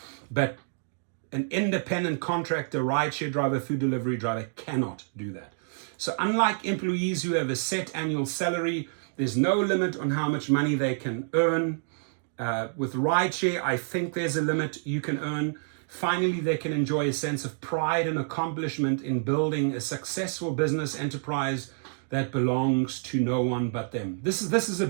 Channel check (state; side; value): silent; left; digital silence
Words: but an independent contractor, rideshare driver, food delivery driver cannot do that. So unlike employees who have a set annual salary, there's no limit on how much money they can earn. With rideshare, I think there's a limit you can earn. Finally, they can enjoy a sense of pride and accomplishment in building a successful business enterprise that belongs to no one but them. This is a